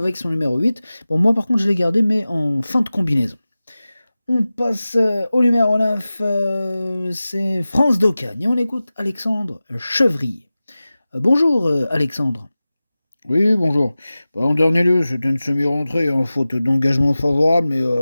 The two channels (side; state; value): both; inverted; correlation -0.96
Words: son numéro 8. Bon, moi par contre je l'ai gardé mais en fin de combinaison. On passe au numéro 9, c'est France d'Ocagne et on écoute Alexandre Chevrier. Bonjour Alexandre. Oui, bonjour. Bah, en dernier lieu, c'était une semi-rentrée, hein, faute d'engagement favorable,